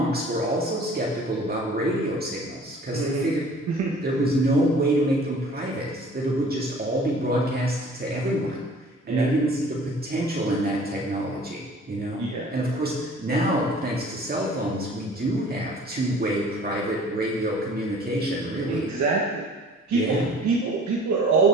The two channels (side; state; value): both; normal; correlation 0.49